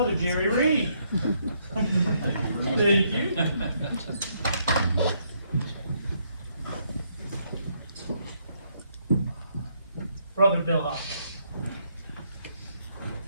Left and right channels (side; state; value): both; inverted; correlation -0.73